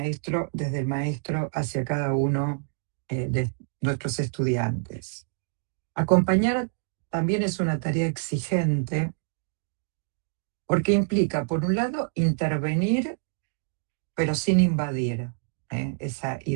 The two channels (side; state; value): left; silent; digital silence